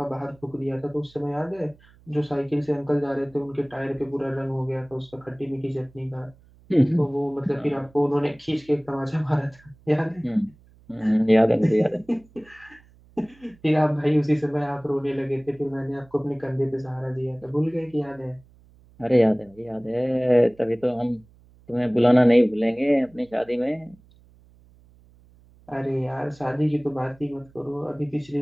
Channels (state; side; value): noise; right; hum, 28 dB below the sound